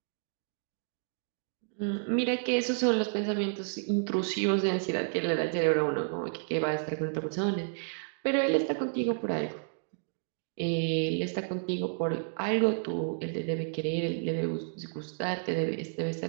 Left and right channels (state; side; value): silent; left; digital silence